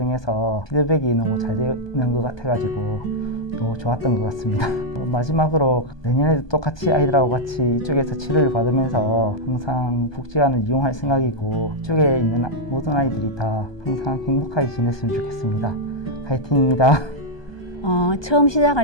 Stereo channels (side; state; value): right; late; 1.2 ms